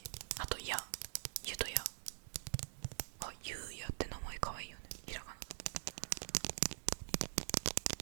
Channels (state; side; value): silent; left; digital silence